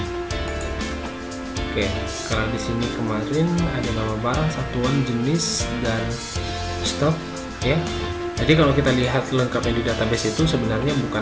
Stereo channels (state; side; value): identical; both; correlation 1.00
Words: Oke, kalau di sini kemarin ada nama barang, satuan, jenis, dan stok ya. Jadi kalau kita lihat lengkapnya di database itu sebenarnya bukan